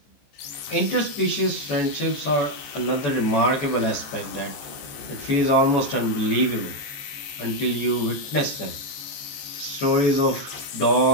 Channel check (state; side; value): late; right; 14 ms